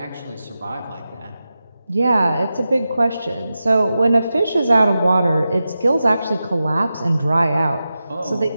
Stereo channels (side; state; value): both; inverted; correlation -0.92